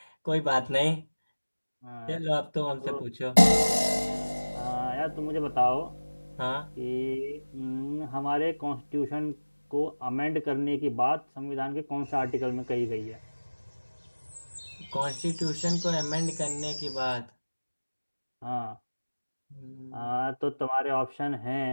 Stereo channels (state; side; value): inverted; both; correlation -1.00